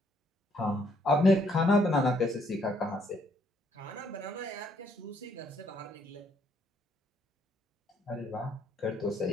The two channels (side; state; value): both; normal; correlation 0.69